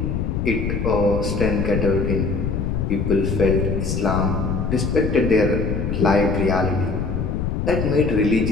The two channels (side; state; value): left; noise; rumble, 1 dB below the sound